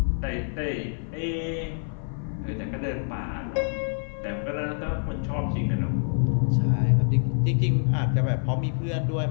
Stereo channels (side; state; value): right; silent; 55 dB below the other